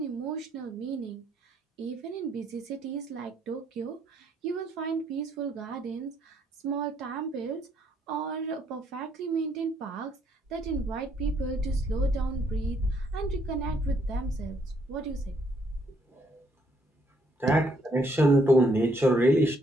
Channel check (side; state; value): both; normal; correlation 0.70